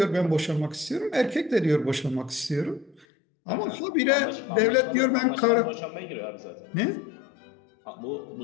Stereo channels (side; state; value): right; drops out; at 3.1 s